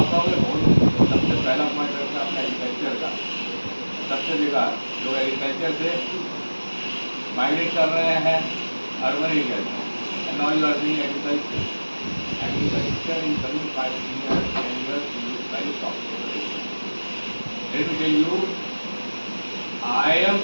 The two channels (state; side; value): inverted; both; correlation -1.00